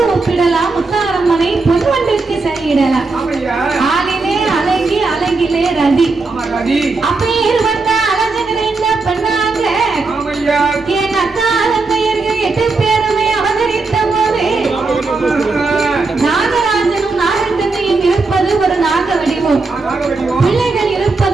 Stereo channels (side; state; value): left; quieter; 3.8 dB